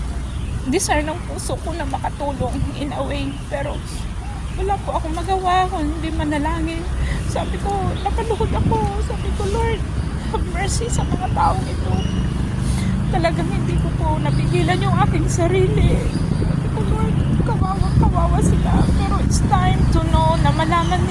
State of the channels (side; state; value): both; identical; correlation 1.00